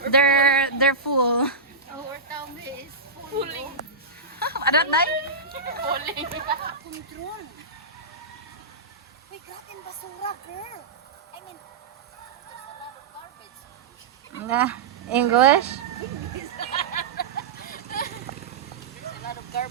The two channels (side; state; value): left; quieter; 4.2 dB